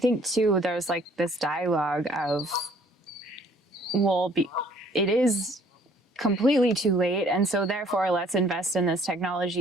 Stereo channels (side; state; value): both; normal; correlation 0.58